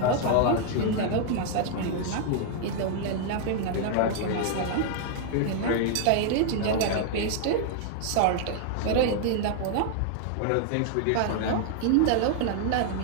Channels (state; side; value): different; both; correlation 0.00